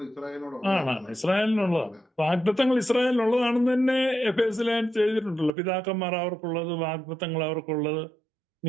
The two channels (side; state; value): left; drops out; at 5.5 s